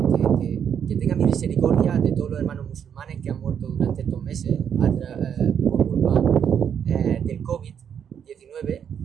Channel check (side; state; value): left; quieter; 8.2 dB